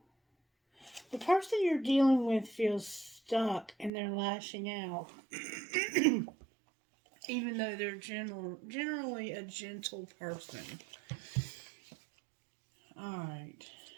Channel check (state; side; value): drops out; left; at 3.9 s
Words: the person you're dealing with feels stuck and they're lashing out. Even though they're generally a gentle person. Alright.